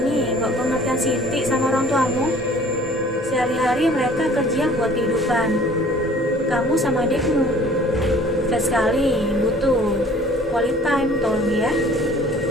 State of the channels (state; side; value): normal; both; correlation 0.51